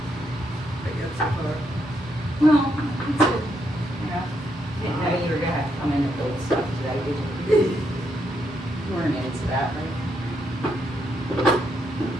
Well, it's good. You know, didn't know you were gonna have to come in and build stuff today, did you? You weren't into that, right?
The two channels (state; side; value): normal; both; correlation 0.78